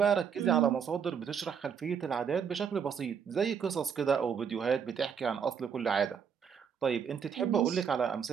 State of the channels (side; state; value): left; quieter; 7.1 dB